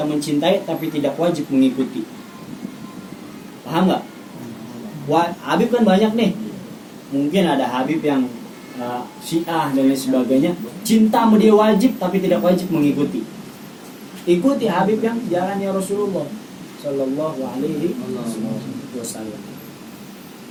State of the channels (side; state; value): both; identical; correlation 1.00